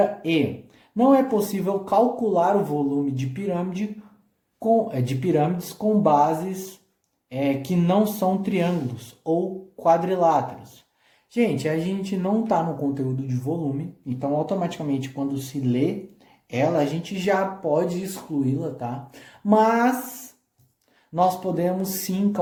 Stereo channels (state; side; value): identical; both; correlation 1.00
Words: E, não é possível calcular o volume de pirâmides com bases que não são triângulos ou quadriláteros. Gente, a gente não está no conteúdo de volume, então automaticamente quando se lê ela, a gente já pode excluí-la, tá? Mas nós podemos sim